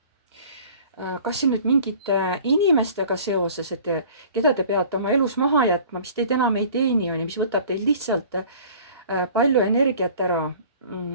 kas siin nüüd mingite inimestega seoses, et keda te peate oma elus maha jätma, mis teid enam ei teeni, mis võtab teil lihtsalt palju energiat ära.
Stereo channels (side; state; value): both; inverted; correlation -0.48